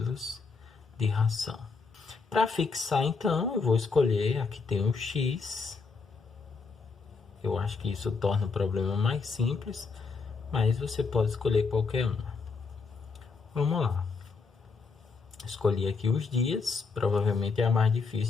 de ração. Para fixar, então, eu vou escolher, aqui tem o x. Eu acho que isso torna o problema mais simples, mas você pode escolher qualquer um. Vamos lá. Escolhi aqui os dias, provavelmente é a mais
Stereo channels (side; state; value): right; quieter; 4.7 dB